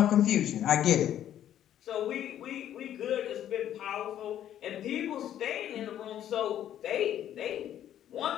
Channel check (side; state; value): right; quieter; 11.0 dB